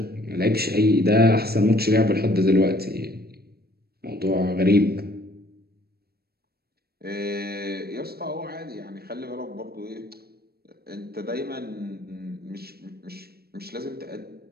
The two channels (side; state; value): left; late; 0.46 ms